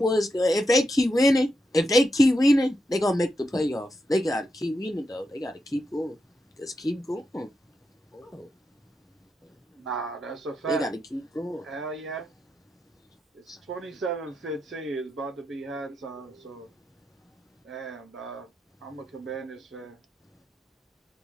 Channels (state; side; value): normal; both; correlation 0.85